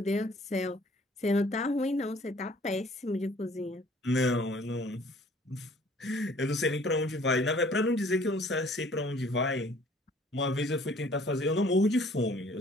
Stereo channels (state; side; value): normal; both; correlation 0.56